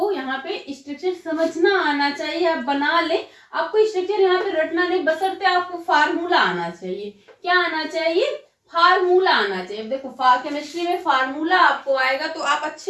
यहाँ पे स्ट्रक्चर समझना आना चाहिए, आप बना ले, आपको स्ट्रक्चर यहाँ पे रटना नहीं, बशर्ते आपको फार्मूला आना चाहिए। क्या आना चाहिए, फार्मूला आना चाहिए। देखो केमिस्ट्री में फार्मूला आपको आएगा तो आप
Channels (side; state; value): both; identical; correlation 1.00